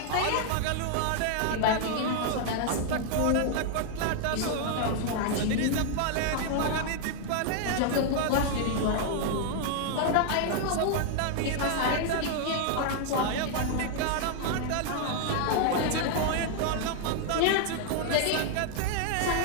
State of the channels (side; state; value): both; different; correlation 0.00